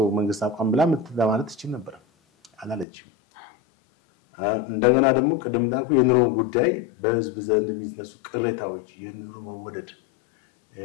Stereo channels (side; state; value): right; drops out; at 2.9 s